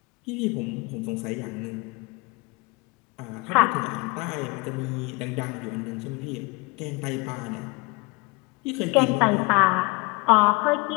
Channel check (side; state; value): right; quieter; 26.9 dB